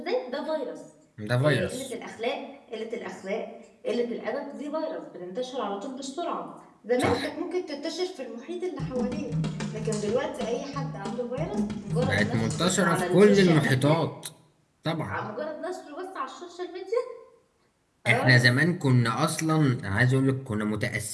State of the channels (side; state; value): both; identical; correlation 1.00